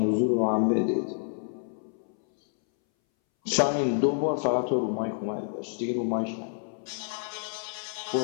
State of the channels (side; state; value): right; silent; 59 dB below the other